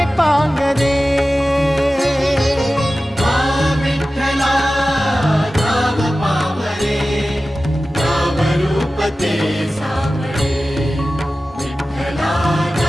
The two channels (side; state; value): both; normal; correlation 0.95